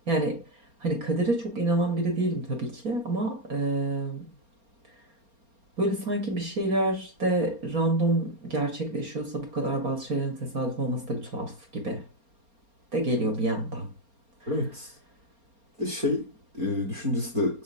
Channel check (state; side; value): late; left; 4.3 ms